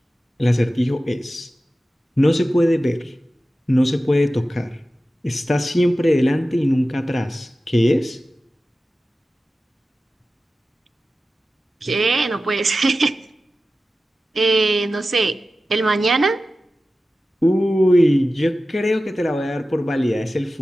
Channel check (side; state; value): both; normal; correlation 0.94